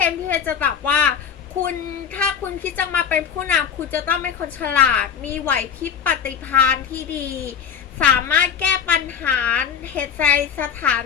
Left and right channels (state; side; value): quieter; right; 7.5 dB